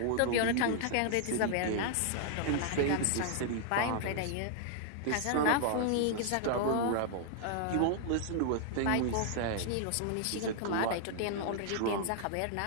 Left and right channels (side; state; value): both; different; correlation 0.00